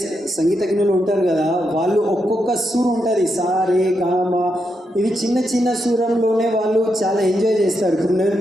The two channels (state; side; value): normal; both; correlation 0.83